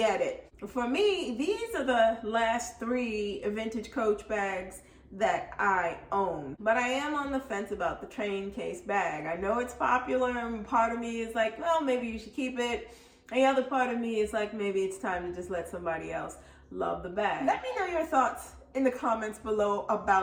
it. For me, these are the last 3 vintage Coach bags that I own. But I am on the fence about the train case bag. I know it's popular, and part of me is like, well, maybe you should keep it. And the other part of me is like, maybe it's time to just let somebody else love the bag. Let me know your thoughts in the comments below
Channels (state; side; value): identical; both; correlation 1.00